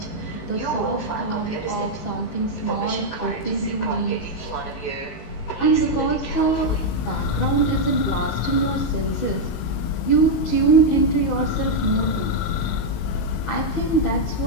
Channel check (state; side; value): late; right; 19 ms